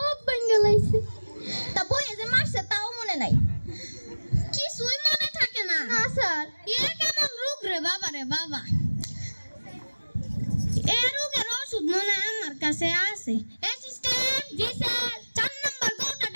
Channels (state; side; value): inverted; both; correlation -1.00